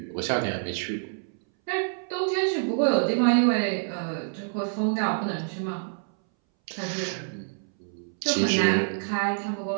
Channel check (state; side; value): silent; left; 60 dB below the other